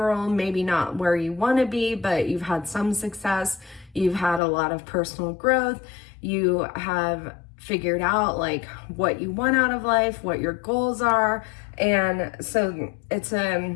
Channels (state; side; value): drops out; right; at 4.4 s